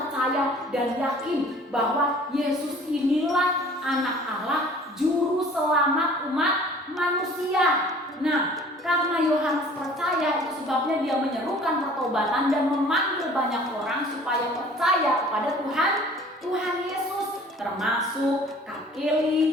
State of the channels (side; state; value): both; normal; correlation 0.50